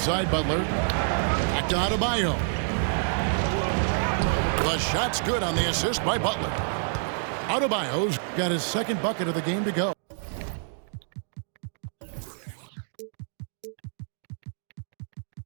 side, Butler. Back to Adebayo. The shot's good on the assist by Butler. Adebayo's got his second bucket of the game to go.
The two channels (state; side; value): silent; left; digital silence